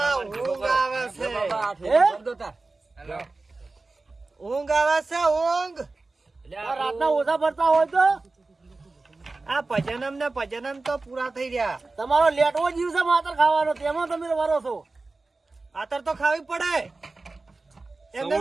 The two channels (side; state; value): left; quieter; 3.5 dB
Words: ઊંઘ આવે છે હે? ઊંઘ આવે છે ઊંઘ આ રાતના ઓછા ભરતા હોય તો આ ભજનમ ને ભજનમ તો પૂરા થઈ રહ્યા તમારો લેટવો જીવ છે માતર ખાવાનો તેમાં તમે વરો છો આતર તો ખાવી પડે એમને